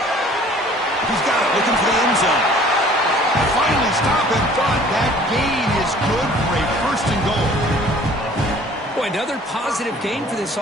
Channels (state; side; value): normal; both; correlation 0.52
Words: He's got it, looking for the end zone. Finally stopping, but that gain is good for a 1st and goal. Boy, another positive gain for this